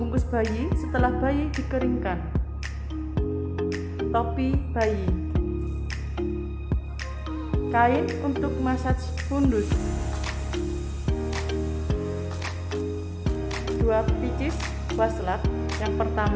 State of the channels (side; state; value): both; identical; correlation 1.00